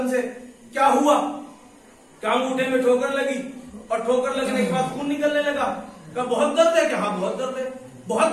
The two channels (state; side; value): identical; both; correlation 1.00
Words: سے کیا ہوا؟ کیا انگوٹھے میں ٹھوکر لگی؟ اور ٹھوکر لگنے کے بعد خون نکلنے لگا. کہا بہت درد ہے. کہ ہاں بہت درد ہے. بہت